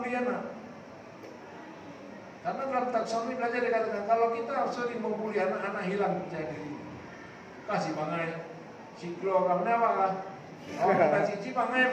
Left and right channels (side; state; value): both; identical; correlation 1.00